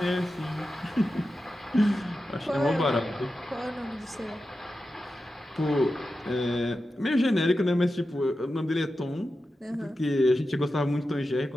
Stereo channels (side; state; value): both; normal; correlation 0.91